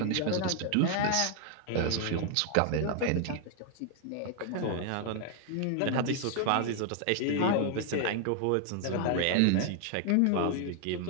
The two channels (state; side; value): different; both; correlation 0.00